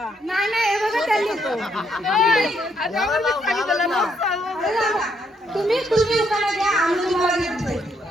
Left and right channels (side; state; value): both; normal; correlation 0.74